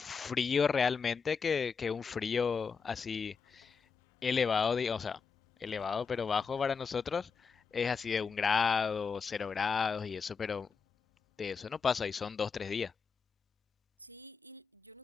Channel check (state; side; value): quieter; right; 5.6 dB